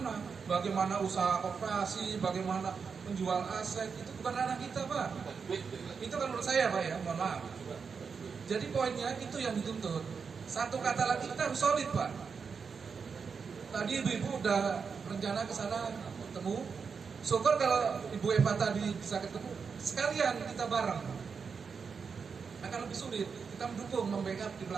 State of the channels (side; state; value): left; quieter; 5.7 dB